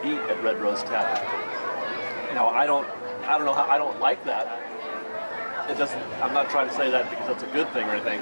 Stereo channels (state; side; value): inverted; both; correlation -1.00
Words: eat at Red Rose Tavern. Now I don't know how, I don't like that. It doesn't. I'm not trying to say that because that's a good thing or anything.